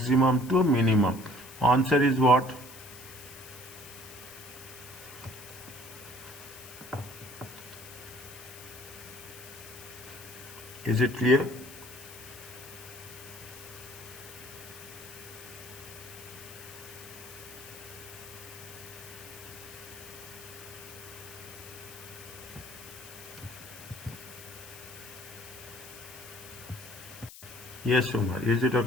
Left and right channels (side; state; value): left; noise; hiss, 15 dB below the sound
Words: to minimum. Answer is what? Is it clear? Yes, Umar. Is it